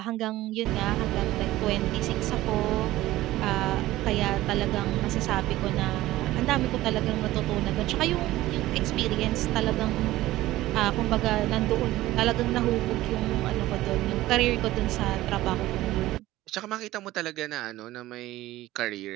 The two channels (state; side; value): quieter; left; 16.4 dB